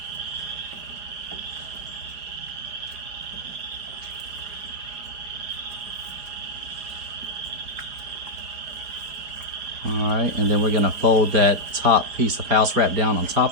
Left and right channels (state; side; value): late; left; 4.7 ms